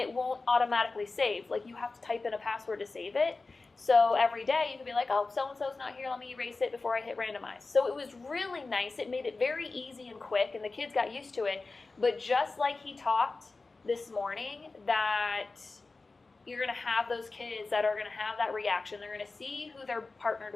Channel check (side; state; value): right; quieter; 3.7 dB